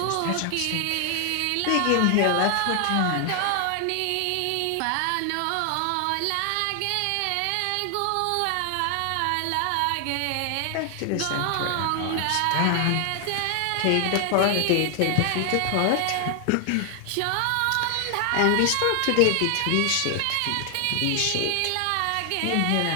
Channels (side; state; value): both; different; correlation 0.00